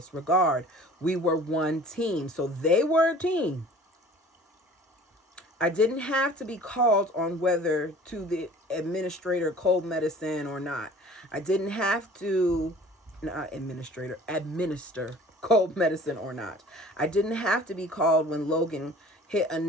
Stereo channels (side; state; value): both; normal; correlation 0.47